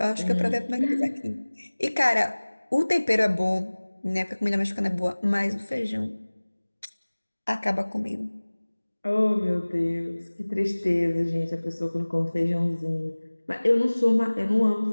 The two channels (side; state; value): both; inverted; correlation -1.00